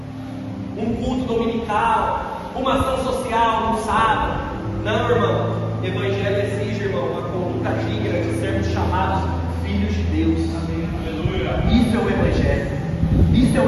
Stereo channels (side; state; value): both; identical; correlation 1.00